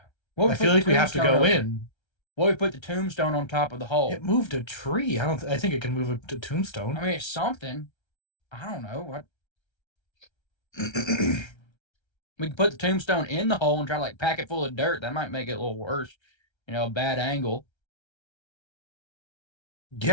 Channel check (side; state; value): right; late; 1.3 ms